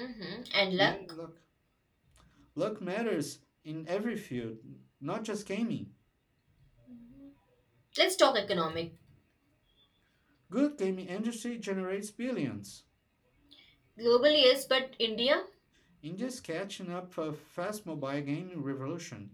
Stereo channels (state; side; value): identical; both; correlation 1.00